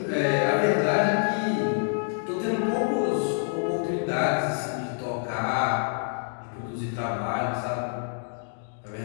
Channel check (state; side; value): silent; right; digital silence